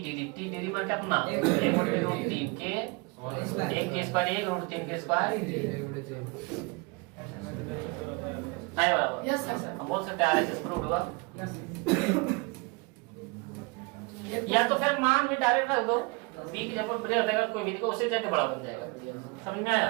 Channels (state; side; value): quieter; left; 28.1 dB